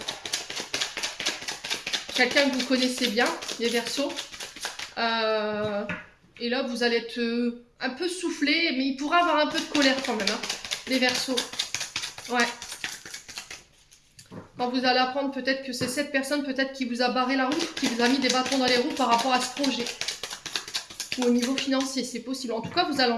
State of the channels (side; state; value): both; identical; correlation 1.00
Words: quelqu'un que vous connaissez bien, les Verseaux. Et là, vous allez être un peu soufflé, mais il pourra avoir un peu de colère quand même, hein, les Verseaux. Ouais. Quand vous allez apprendre peut-être que c'est cette personne peut-être qui vous a barré la route, qui vous a mis des bâtons dans les roues par rapport à ce projet. Ou au niveau financier, c'est possible. En tout cas, vous allez